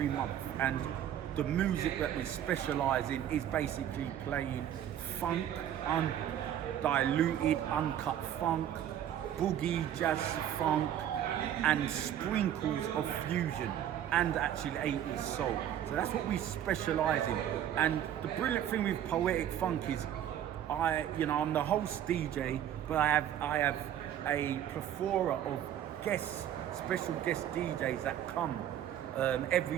month, and the music that we specialise in is basically playing funk, undiluted, uncut funk, boogie, jazz funk, and sprinkles of fusion, and actually 80s soul. So that's what we specialise in. And the brilliant thing with Poetic Funk is I'm the host DJ, but I have a plethora of special guest DJs that come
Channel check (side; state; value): left; quieter; 10.7 dB